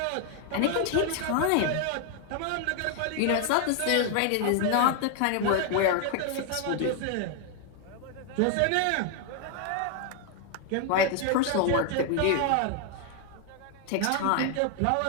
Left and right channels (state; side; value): different; both; correlation 0.00